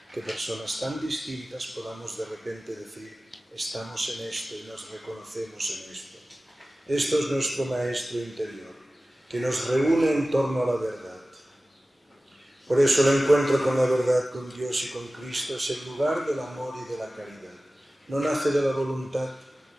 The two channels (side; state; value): both; normal; correlation 0.97